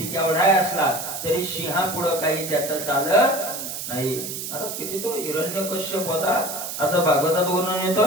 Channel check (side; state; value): right; noise; hiss, 6 dB below the sound